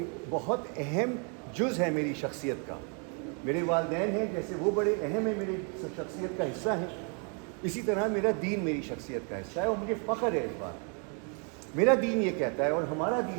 بہت اہم جز ہے میری شخصیت کا. میرے والدین ہیں، جیسے وہ بڑے اہم ہیں، میری شخصیت کا حصہ ہیں، اسی طرح میرا دین میری شخصیت کا حصہ ہے، اور مجھے فخر ہے اس بات. میرا دین یہ کہتا ہے اور ہمارا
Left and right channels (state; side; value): quieter; left; 38.6 dB